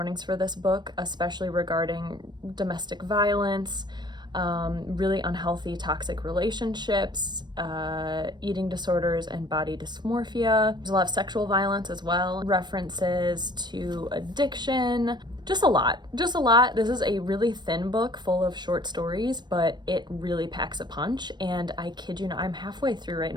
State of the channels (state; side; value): late; left; 0.21 ms